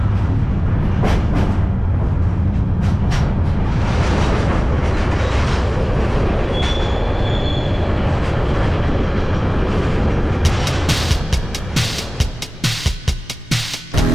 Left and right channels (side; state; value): both; normal; correlation 0.98